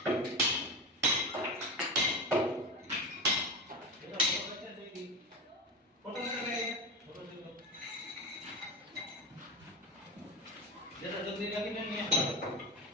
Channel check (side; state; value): both; normal; correlation 0.23